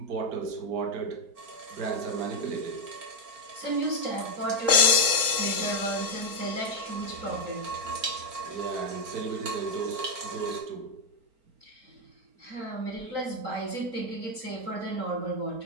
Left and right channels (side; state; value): left; late; 4.4 ms